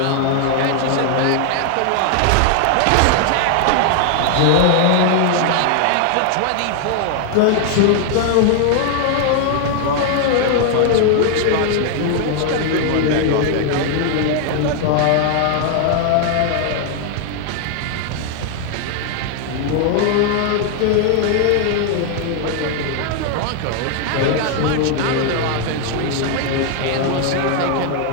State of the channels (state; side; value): different; both; correlation 0.00